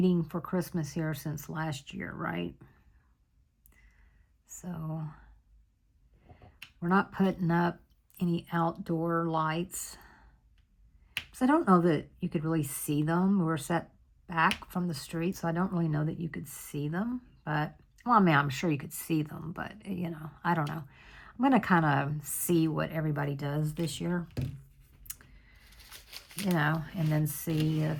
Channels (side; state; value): both; identical; correlation 1.00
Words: for Christmas here since last year, right? So we're not putting up any outdoor lights. So I don't know that you could really see them. We're set back from the street, so I don't really know that you could see them. But, well, I mean, I'm sure you could see them, but, you know, I don't know. I'm going to kind of see what everybody does this year, you know, and then see if,